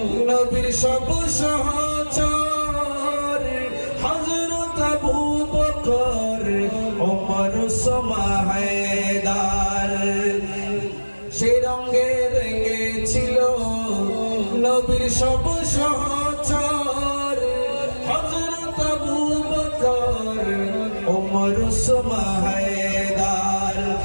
নবীর সব সহচর, হযরত আবু বকর, ওমর, ওসমান, হায়দার। সে রঙে রেঙেছিল নবীর সব সহচর, হযরত আবু বকর, ওমর, ওসমান, হায়দার।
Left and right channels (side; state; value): both; inverted; correlation -1.00